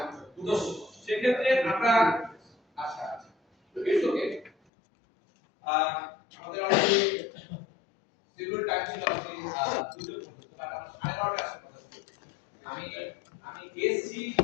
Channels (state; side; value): drops out; right; at 4.5 s